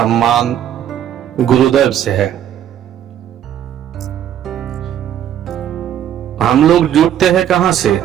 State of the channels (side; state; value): left; quieter; 10.4 dB